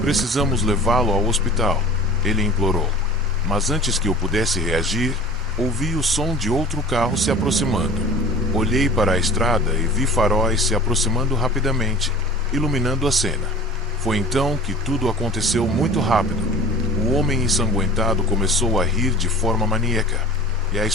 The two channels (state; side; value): normal; both; correlation 0.42